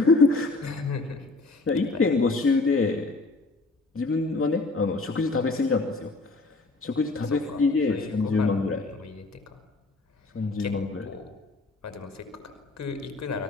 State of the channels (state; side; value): quieter; right; 3.4 dB